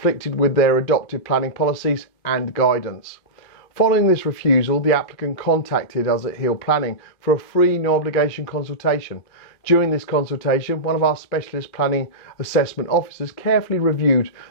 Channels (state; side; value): late; right; 2.5 ms